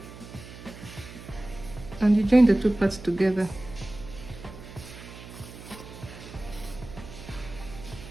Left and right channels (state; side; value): noise; right; hum, 15 dB below the sound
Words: and you join the 2 parts together.